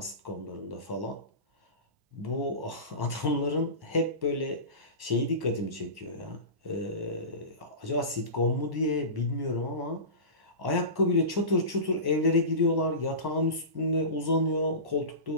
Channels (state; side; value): late; left; 1.1 ms